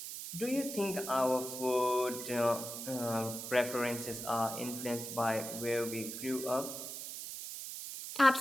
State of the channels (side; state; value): right; noise; hiss, 7 dB below the sound